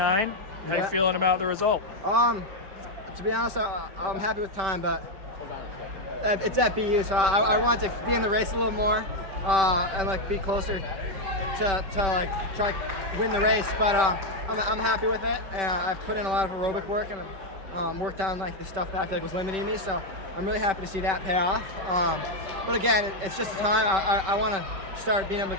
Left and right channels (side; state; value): left; late; 5.2 ms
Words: How you feeling about the result? To be honest, I'm happy with time, but it's at BU, so I want to be in the race a little more and like be closer to like try to win the race. But I'm happy with it, and I've put in a lot of aerobic work and worked on like the stuff that I feel like was limiting me. So I'm really happy to see that pay off. But again, it's just a time. I want to start being able to